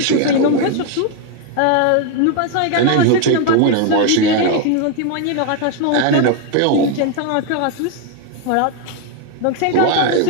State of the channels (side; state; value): both; different; correlation 0.01